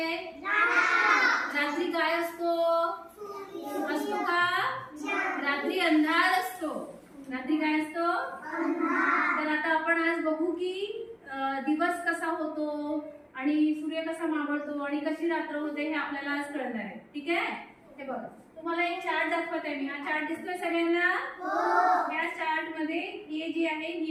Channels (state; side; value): identical; both; correlation 1.00